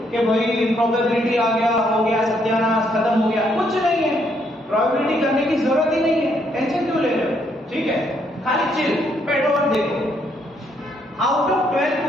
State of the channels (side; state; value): both; normal; correlation 0.72